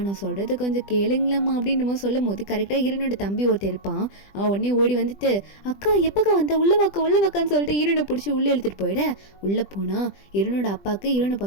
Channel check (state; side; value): late; right; 20 ms